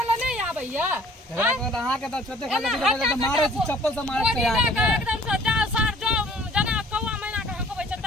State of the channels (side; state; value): both; normal; correlation 0.53